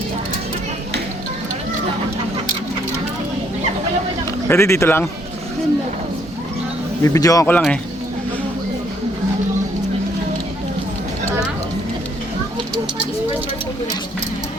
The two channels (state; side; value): normal; both; correlation 0.68